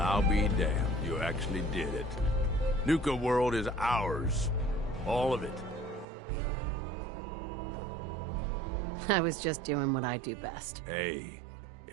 be damned. You actually did it. Nuka World is ours. All of it. I was just doing what I do best. Hey,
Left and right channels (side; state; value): left; drops out; at 6.1 s